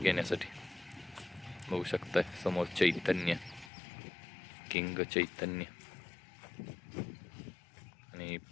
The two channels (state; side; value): drops out; right; at 3.7 s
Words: बघू शकताय समोर चैतन्य, किंग चैतन्य आणि